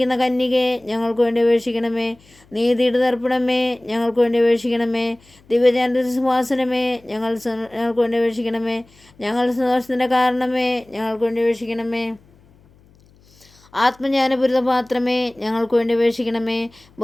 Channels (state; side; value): noise; left; hum, 29 dB below the sound